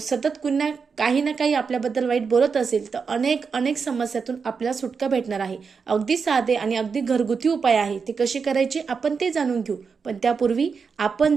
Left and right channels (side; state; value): left; quieter; 5.5 dB